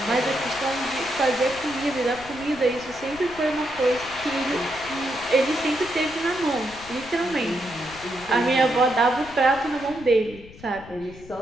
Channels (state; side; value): noise; left; rumble, 18 dB below the sound